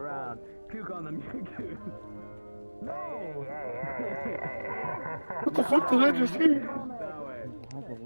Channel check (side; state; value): both; inverted; correlation -1.00